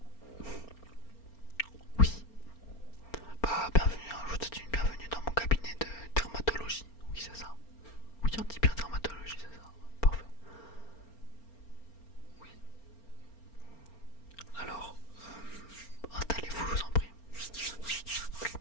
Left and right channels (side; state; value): right; late; 4.4 ms